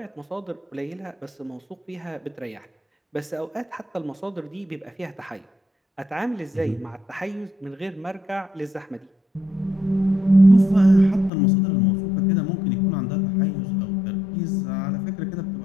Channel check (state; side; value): drops out; right; at 11.3 s